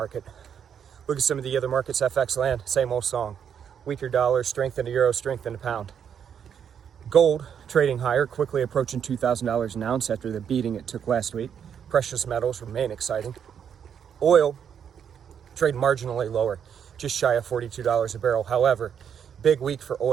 Look at some of the other markets, FX land, same old song. Weaker dollar, strength in the euro, strength in the pound. Gold trading higher, quickly approaching $2,000 an ounce after the beating it took last week. Precious metals remain exciting. Oil trade marginally lower, just shy of $42 a barrel. However, big week for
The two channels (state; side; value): quieter; left; 8.1 dB